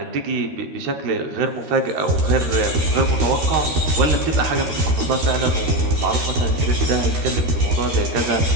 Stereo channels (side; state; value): left; late; 13 ms